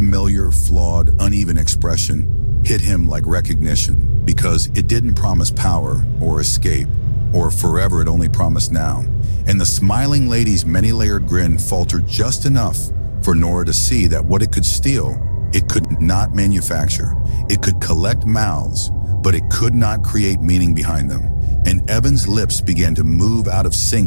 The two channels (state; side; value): inverted; both; correlation -1.00